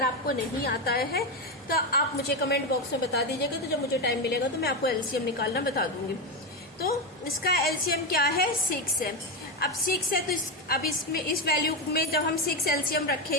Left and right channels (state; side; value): normal; both; correlation 0.12